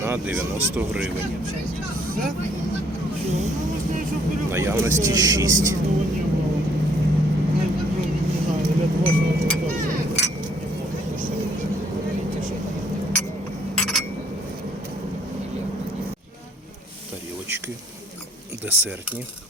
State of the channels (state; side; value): normal; both; correlation 0.64